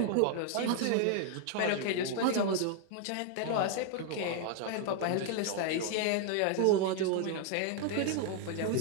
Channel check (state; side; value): different; both; correlation 0.00